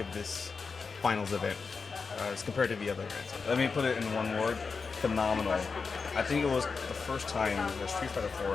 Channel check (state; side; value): quieter; right; 4.9 dB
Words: this finals event as compared to the other events? Let me put it in one word: phenomenal. I think it was the first time that Street Fighter 4